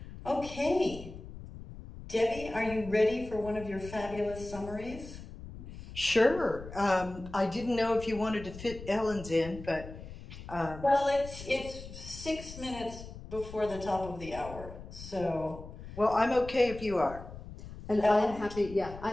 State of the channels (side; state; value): left; noise; rumble, 13 dB below the sound